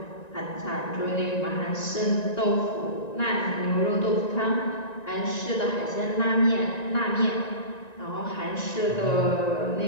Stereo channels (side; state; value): right; late; 1.9 ms